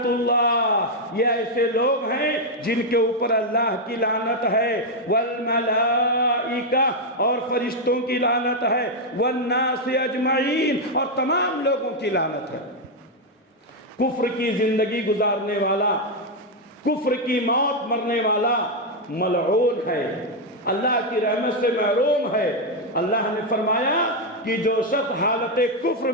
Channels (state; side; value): normal; both; correlation 0.02